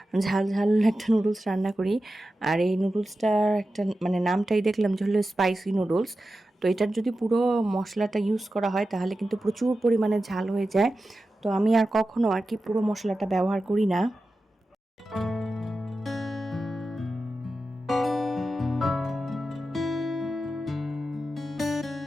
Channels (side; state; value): both; normal; correlation 0.92